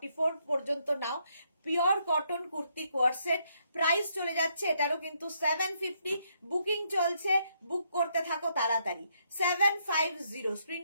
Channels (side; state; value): both; inverted; correlation -0.74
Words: পর্যন্ত নাও। Pure cotton kurti coord set, price চলে যাচ্ছে এটারও কিন্তু 750। বুকিং চলছে, বুক করতে থাকো তাড়াতাড়ি। 750